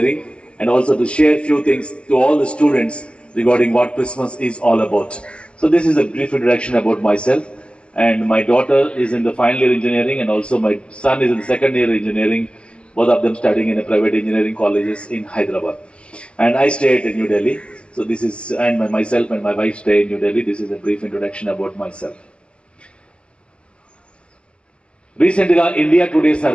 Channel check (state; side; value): late; right; 0.058 ms